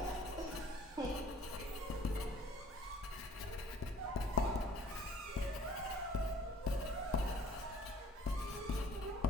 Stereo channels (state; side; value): normal; both; correlation 0.54